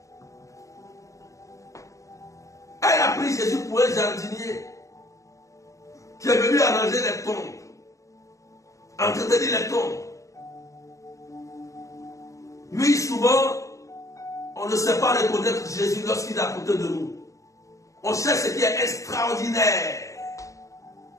Elle a pris Jésus pour un jardinier qui est venu arranger les tombes, entretenir les tombes. Lui, souvent, on ne sait pas reconnaître Jésus lorsqu'il est à côté de nous. On cherche ce qui est extraordinaire.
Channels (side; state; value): right; late; 0.15 ms